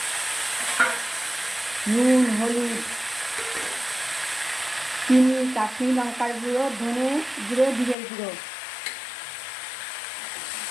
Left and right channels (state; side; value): drops out; right; at 8.0 s